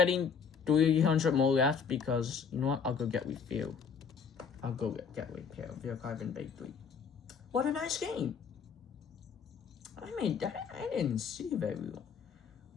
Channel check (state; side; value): quieter; right; 6.3 dB